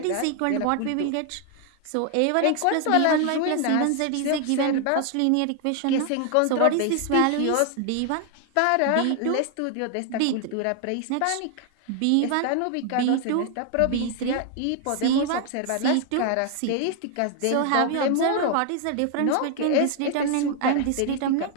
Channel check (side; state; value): both; different; correlation 0.00